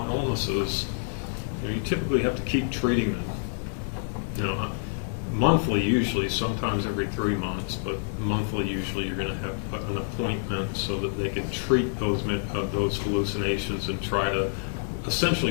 illnesses, you typically have to keep treating them. Monthly usually, sometimes every 3 months, but monthly usually you're going to have an appointment so that they can treat those hallucinations and try to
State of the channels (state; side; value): silent; right; 60 dB below the other